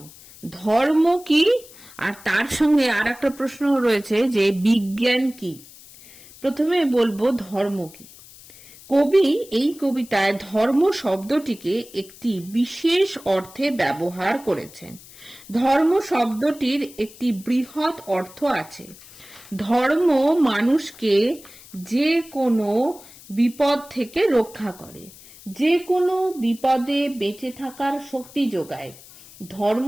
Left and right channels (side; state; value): left; noise; hiss, 21 dB below the sound